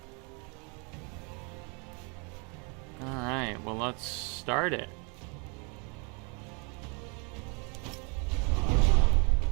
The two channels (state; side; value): quieter; left; 34.0 dB